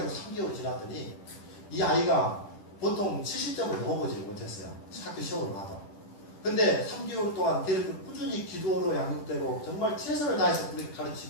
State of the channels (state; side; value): late; right; 10 ms